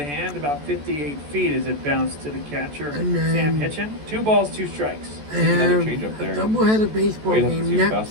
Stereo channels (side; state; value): left; late; 14 ms